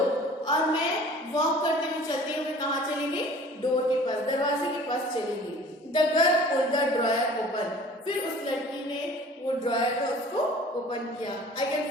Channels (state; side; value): normal; both; correlation 0.47